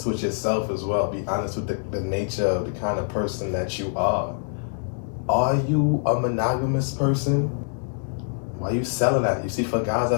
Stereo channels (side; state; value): right; silent; digital silence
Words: with yourself as well. Be honest with the nature of the kind of person that you are. Are you a monogamous person? Why are you selling that? You see, for guys,